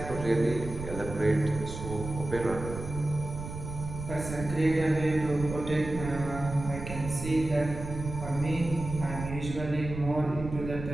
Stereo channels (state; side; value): noise; right; rumble, 9 dB below the sound